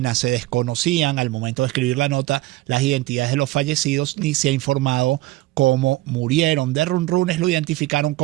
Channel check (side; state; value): left; quieter; 17.9 dB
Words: Se desconocían al momento de escribir la nota las identidades de los fallecidos ni se ha informado cómo murieron. De Runrunes lo identificaron